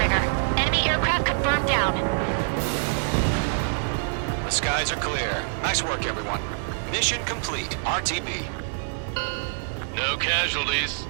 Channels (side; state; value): left; silent; 60 dB below the other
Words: Enemy aircraft confirmed down. The skies are clear. Nice work, everyone. Mission complete. RTB. No casualties.